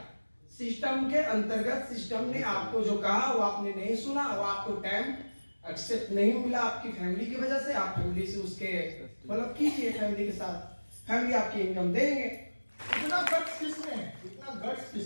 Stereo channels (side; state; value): both; inverted; correlation -1.00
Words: सिस्टम के अंतर्गत सिस्टम ने आपको जो कहा वो आपने नहीं सुना, वो आपको टाइम एक्सेप्ट नहीं मिला आपकी फैमिली की वजह से। आप फैमिली से उसके मतलब कीजिए, फैमिली के साथ, फैमिली आपकी इनकम देंगे। इतना गट्स किसमें है? इतना गट्स